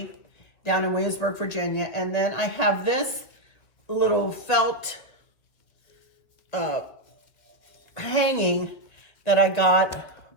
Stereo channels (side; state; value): right; late; 2.0 ms